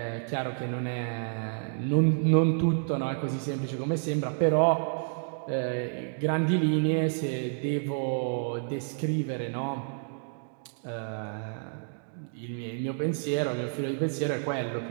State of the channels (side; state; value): left; silent; digital silence